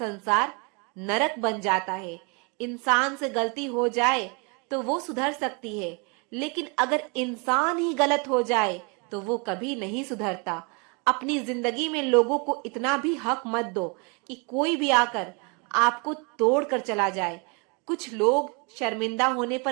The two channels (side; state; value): left; quieter; 32.7 dB